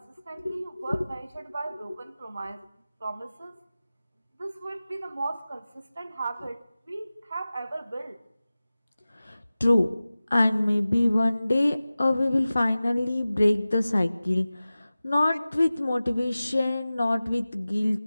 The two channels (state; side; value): inverted; both; correlation -0.97